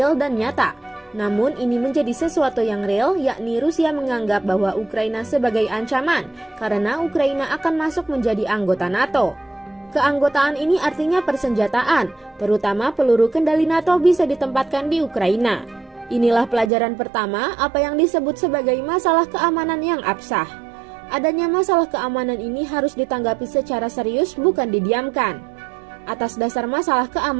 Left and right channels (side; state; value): left; drops out; at 16.7 s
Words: dan nyata. Namun ini menjadi sesuatu yang real, yakni Rusia menganggap bahwa Ukraina sebagai ancaman karena Ukraina akan masuk menjadi anggota NATO. Keanggotaan ini artinya persenjataan, terutama peluru kendali NATO bisa ditempatkan di Ukraina. Inilah pelajaran pertama apa yang disebut sebagai masalah keamanan yang absah. Adanya masalah keamanan ini harus ditanggapi secara serius, bukan didiamkan. Atas dasar masalah